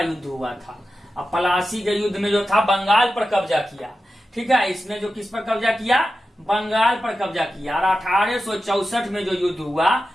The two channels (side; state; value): both; normal; correlation 0.92